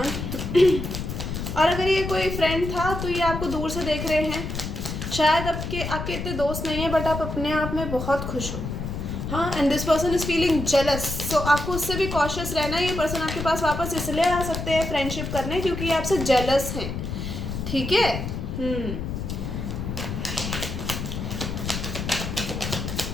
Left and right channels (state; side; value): noise; left; rumble, 5 dB below the sound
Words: और अगर ये कोई फ्रेंड था तो ये आपको दूर से देख रहे हैं, शायद आपके इतने दोस्त नहीं है बट आप अपने आप में बहुत खुश हो, हाँ। And this person is feeling jealous, so आपको उससे भी कॉशियस रहना है। ये पर्सन आपके पास वापस इसलिए आ सकते हैं फ्रेंडशिप करने क्योंकि ये आपसे जेलस हैं, ठीक है।